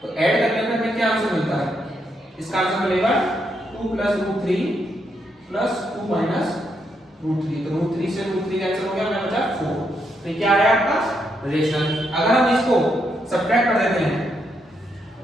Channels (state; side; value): normal; both; correlation 0.79